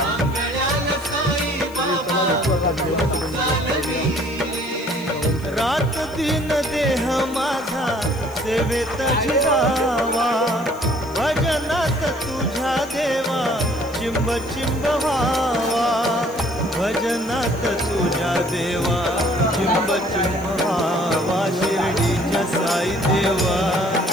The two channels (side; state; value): left; noise; hiss, 23 dB below the sound